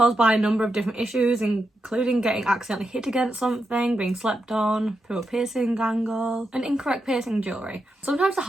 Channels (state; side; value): normal; both; correlation 0.86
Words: by a number of different issues, including getting accidentally hit against something, being slept on, poor piercing angle, and incorrect piercing jewellery. Sometimes the